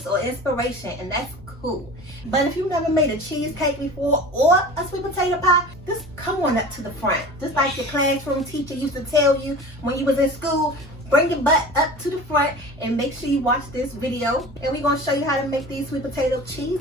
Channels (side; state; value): both; normal; correlation 0.37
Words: or inspiration, and that's cool. But if you've never made a cheesecake before or a sweet potato pie, just come on up to the front. Just like your classroom teacher used to tell you when you was in school, bring your butt up to the front and make sure you watch this video. And we're going to show you how to make these sweet potato